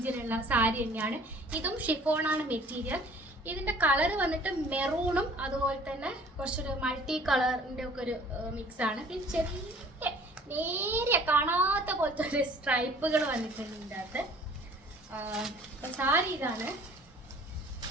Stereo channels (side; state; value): both; normal; correlation 0.52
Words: സാരി തന്നെയാണ്. ഇതും ഷിഫോണാണ് മെറ്റീരിയൽ. ഇതിന്റെ കളർ വന്നിട്ട് മെറൂണും അതുപോലെ തന്നെ കുറച്ചൊരു മൾട്ടി കളറിന്റെ ഒക്കെ ഒരു മിക്സ് ആണ്. പിന്നെ ചെറിയ നേരെ കാണാത്ത പോലത്തെ ഒരു സ്ട്രൈപ്പുകൾ വന്നിട്ടുണ്ട് ഇതിൻ്റെ അകത്ത്. അപ്പൊ സാരി ഇതാണ്.